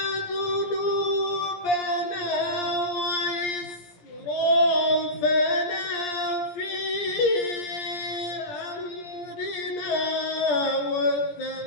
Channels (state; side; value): late; right; 17 ms